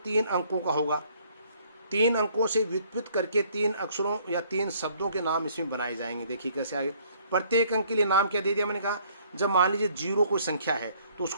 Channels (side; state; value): both; inverted; correlation -0.61